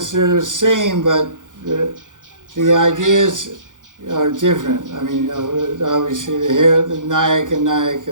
they're the same, but the ideas are different. I mean, obviously the Nayak and Nayaka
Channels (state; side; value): late; left; 0.87 ms